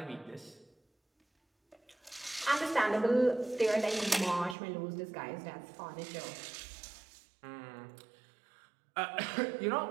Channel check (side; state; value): left; drops out; at 4.5 s